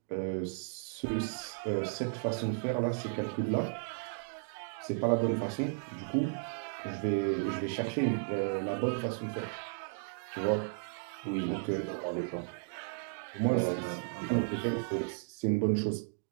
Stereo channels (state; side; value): silent; left; digital silence